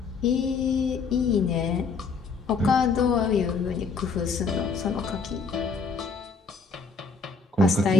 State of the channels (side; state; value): right; quieter; 4.7 dB